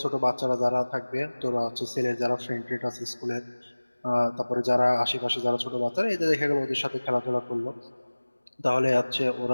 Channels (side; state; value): both; inverted; correlation -1.00